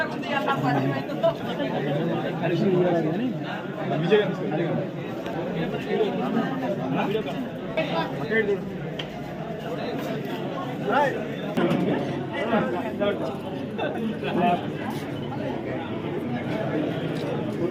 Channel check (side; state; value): both; identical; correlation 1.00